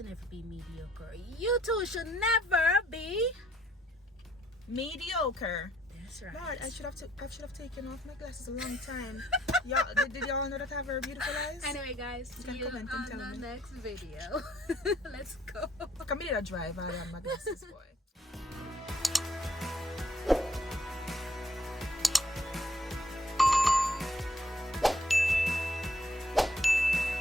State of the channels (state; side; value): normal; both; correlation 0.67